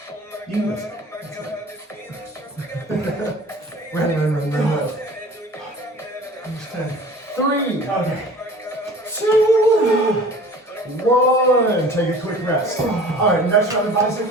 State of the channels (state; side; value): normal; both; correlation 0.44